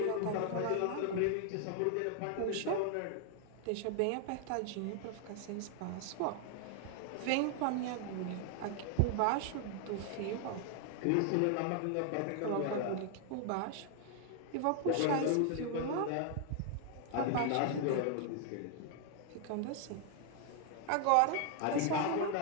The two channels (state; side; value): different; both; correlation 0.00